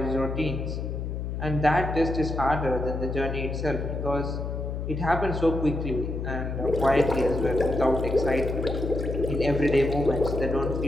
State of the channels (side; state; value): left; noise; hum, 4 dB below the sound